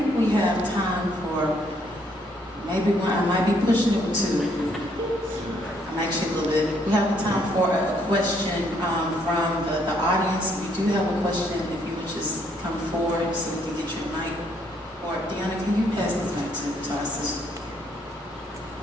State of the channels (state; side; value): normal; both; correlation 0.69